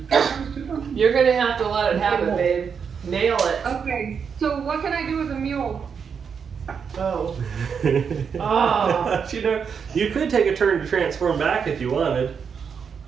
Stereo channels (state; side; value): quieter; left; 6.6 dB